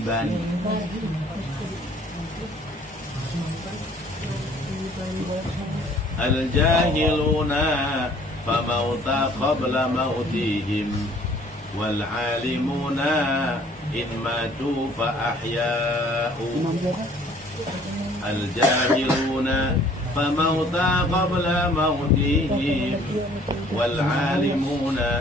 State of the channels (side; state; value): both; normal; correlation 0.56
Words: Al-jahiluna famauta qabla mautihim wal alimuna in matu fa ahya'u. Al-jahiluna famauta qabla mautihim wal